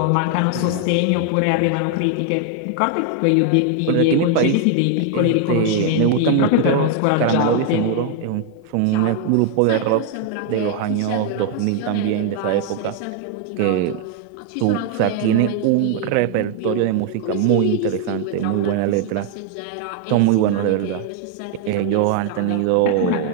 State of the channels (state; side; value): different; both; correlation 0.00